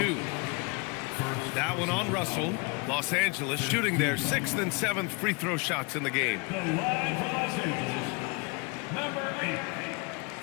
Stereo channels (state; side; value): quieter; right; 30.2 dB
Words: That one on Russell. Los Angeles shooting their 6th and 7th free throw shots in the game. The line for Los Angeles, number 8,